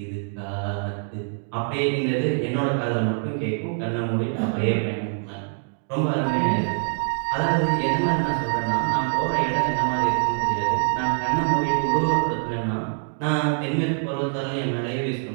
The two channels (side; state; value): left; silent; 62 dB below the other